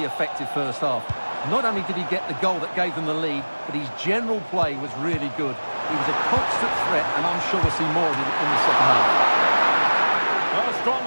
effective first half. Not only did he get the goal that gave them the lead, but his general play was really good. He was a constant threat, and I'm sure we'll see more of him in the second half. A strong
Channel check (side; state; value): both; inverted; correlation -1.00